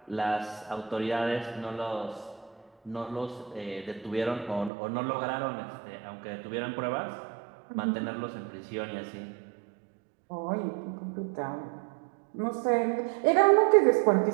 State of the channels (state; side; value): drops out; left; at 4.7 s